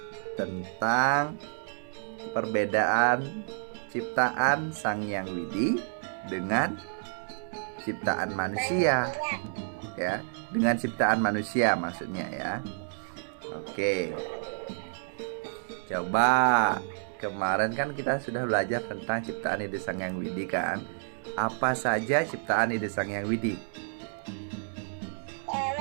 tentang perbedaan ciptaan Sang Hyang Widi dengan ciptaan manusia. Ya, dengan ciptaan manusia maksudnya ya. Oke. Coba, kemarin kan kita sudah belajar tentang ciptaan ide Sang Hyang Widi kan. Apa saja ciptaan ide Sang Hyang Widi?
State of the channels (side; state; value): left; silent; digital silence